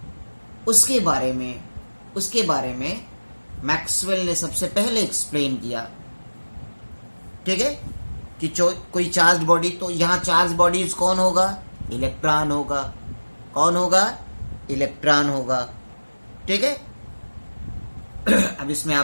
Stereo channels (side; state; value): both; inverted; correlation -1.00